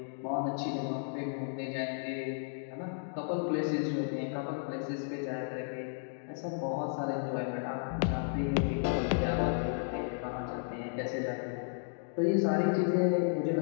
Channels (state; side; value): silent; right; digital silence